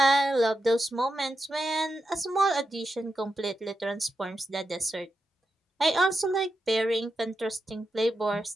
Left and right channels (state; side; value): normal; both; correlation 0.87